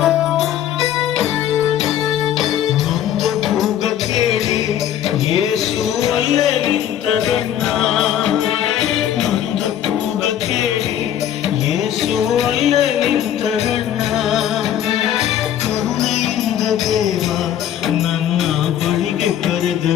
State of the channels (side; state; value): right; quieter; 10.7 dB